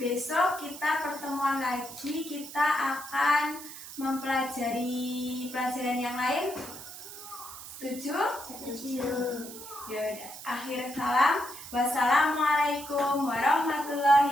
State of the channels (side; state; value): right; noise; hiss, 13 dB below the sound